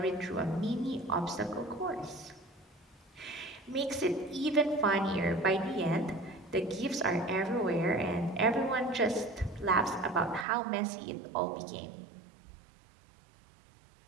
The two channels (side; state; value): left; drops out; at 10.5 s